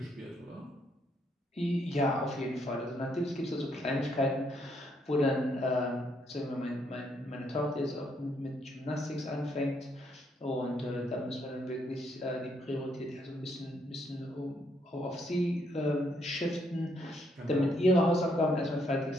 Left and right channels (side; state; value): both; normal; correlation 0.73